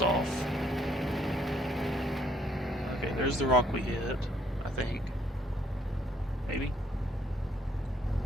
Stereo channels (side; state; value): both; normal; correlation 0.66